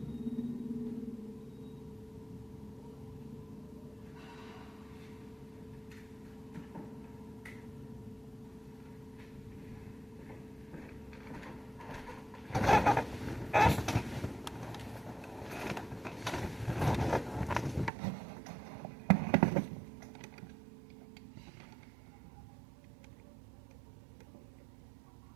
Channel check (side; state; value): left; drops out; at 17.9 s